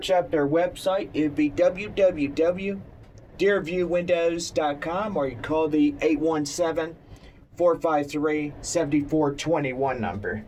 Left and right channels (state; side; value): identical; both; correlation 1.00